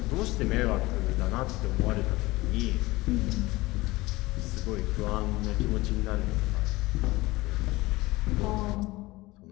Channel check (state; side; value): quieter; right; 20.3 dB